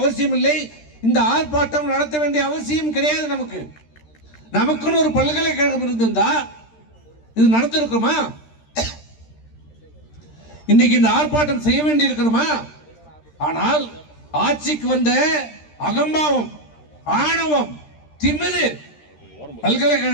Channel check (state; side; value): late; right; 13 ms